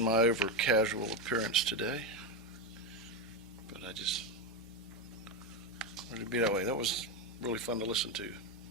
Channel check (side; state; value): both; normal; correlation 0.11